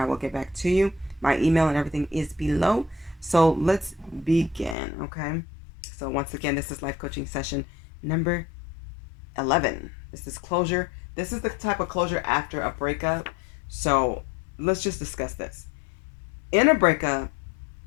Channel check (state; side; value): drops out; right; at 4.8 s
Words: will get back to you. My email and everything is below. So let's begin, okay? So once again, this is life coaching session number 11. This is closure. This is the type of closure after a breakup. So let's just discuss this. In a breakup